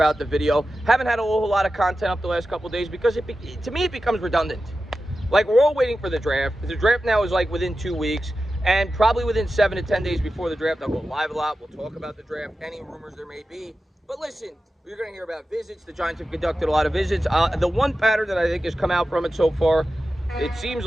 the video. Haven't had a whole lot of content up the last couple of days because to me it becomes redundant. Like, we're all waiting for the draft. The draft now is like within 2 weeks, and probably within 7 to 10 days before the draft, I'll go live a lot. We'll talk about the draft, any rumors there may be. But listen, you're going to hear about visits. The Giants have conducted a lot of visits. The one pattern that I think has come out from it so far, it seems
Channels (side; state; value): both; normal; correlation 0.93